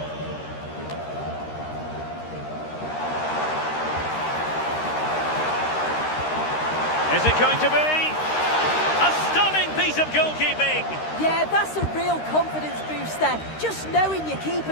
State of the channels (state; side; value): late; right; 13 ms